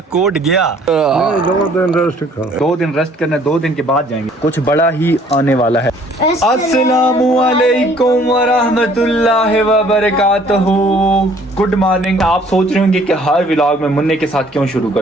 कोड गया। 2 दिन रेस्ट करना, 2 दिन के बाद जाएंगे। कुछ बड़ा ही आने वाला है। अस्सलामुअलैकुम वरहमतुल्लाहि वबरकातुहू। Good morning. आप सोच रहे होंगे कि हर व्लॉग में मुन्ने के साथ क्यों शुरू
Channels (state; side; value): normal; both; correlation 0.58